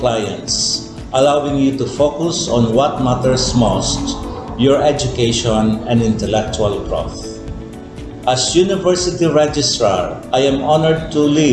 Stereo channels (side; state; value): both; identical; correlation 1.00